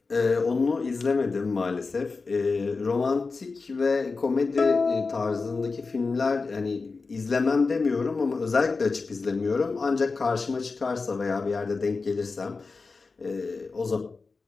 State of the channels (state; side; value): quieter; right; 4.2 dB